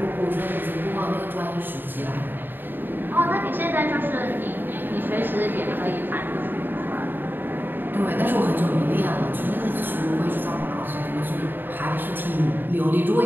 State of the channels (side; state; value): left; late; 0.094 ms